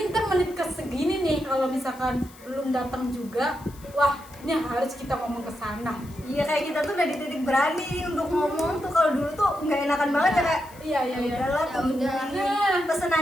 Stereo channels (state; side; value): noise; left; hiss, 23 dB below the sound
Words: ntar menit ke segini nih, kalau misalkan belum datang juga, wah ini harus kita ngomong ke sana. Iya, kayak kita tuh udah di titik berani untuk ngomong tuh. Kalau dulu tuh nggak enakan banget ya, kayak Iya udahlah, Ya udah.